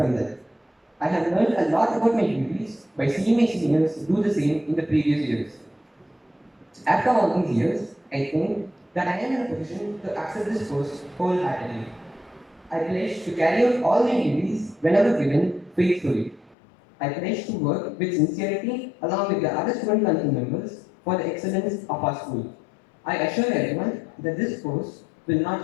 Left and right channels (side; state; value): right; drops out; at 16.6 s